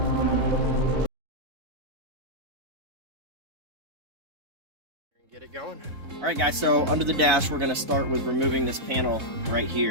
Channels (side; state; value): left; late; 4.1 ms